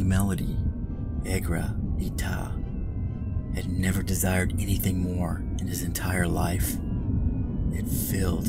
melody. Egra Ita had never desired anything more in his entire life. It filled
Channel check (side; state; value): both; identical; correlation 1.00